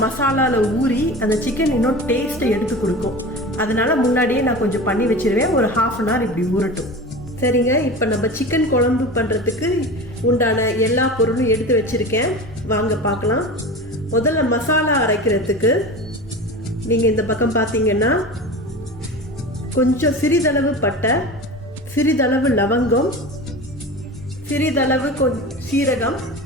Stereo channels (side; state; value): both; normal; correlation 0.32